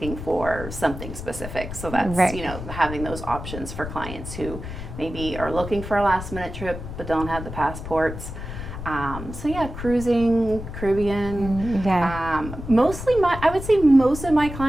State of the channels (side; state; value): left; noise; rumble, 9 dB below the sound